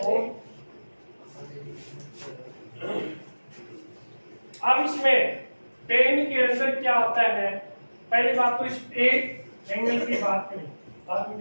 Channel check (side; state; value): both; inverted; correlation -1.00